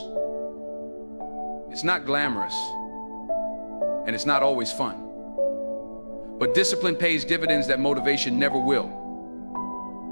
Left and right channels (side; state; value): both; inverted; correlation -1.00